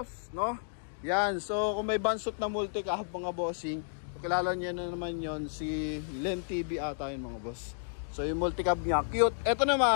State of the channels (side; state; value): right; silent; digital silence